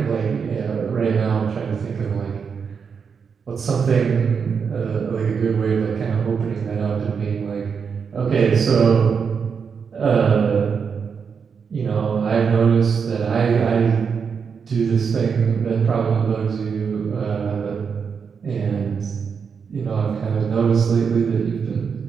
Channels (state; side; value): quieter; left; 6.2 dB